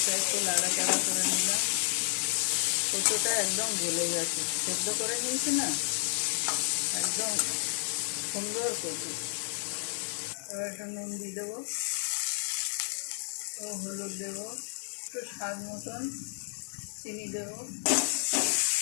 একটু নাড়াচাড়া করে নিলাম। কচুটা একদম গলে গেছে, সেদ্ধ করে নিয়েছি না, একদম সুন্দর কচু। এবার একটু নুন দিয়ে দেবো ও হলুদ দেবো, একটু স্বাদ মতন চিনি দেবো।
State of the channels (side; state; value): right; silent; 57 dB below the other